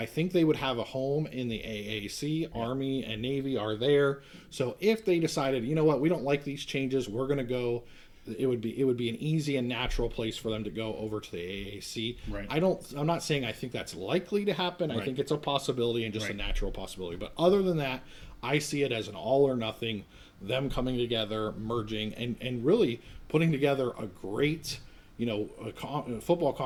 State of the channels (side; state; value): both; identical; correlation 1.00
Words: think they would have a home in the AAC. Army and Navy are there. So if they decided, you know what, we don't like these changes, we're going to go, it would be an easy and natural place for them to go over to the AAC. Right. I'm not saying I think that's likely to happen. I Right. think it's a possibility and just a Right. natural possibility. But other than that, I see it as an all or nothing, them coming together, merging, and really putting together a great, a football